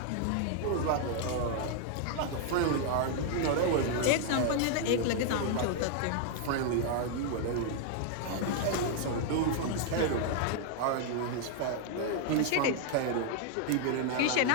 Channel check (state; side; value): different; both; correlation 0.00